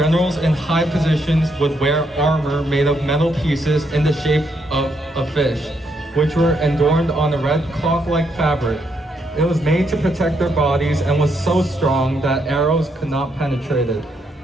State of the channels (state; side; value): normal; both; correlation 0.76